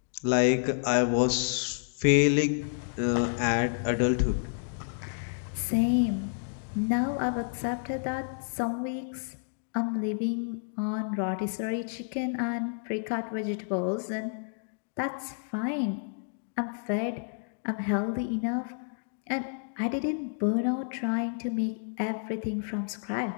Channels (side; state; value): right; silent; digital silence